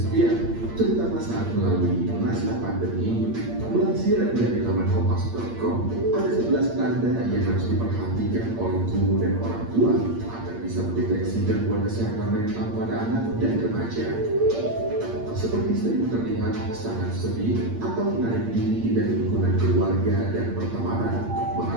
terutama saat melalui masa pandemi. Melansir dari laman kompas.com, ada 11 tanda yang harus diperhatikan oleh guru dan orang tua agar bisa mendeteksi gangguan kesehatan mental pada anak dan remaja. Seperti sering terlihat sangat sedih atau menarik diri dari lingkungan keluarga dan pertemanan,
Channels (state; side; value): late; left; 8.6 ms